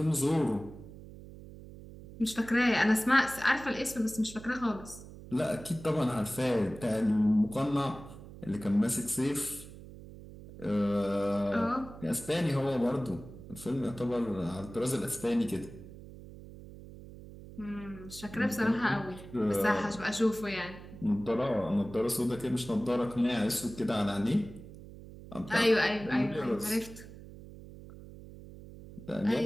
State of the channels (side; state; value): right; noise; hum, 16 dB below the sound